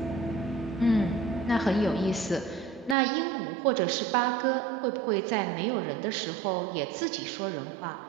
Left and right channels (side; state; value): left; drops out; at 3.0 s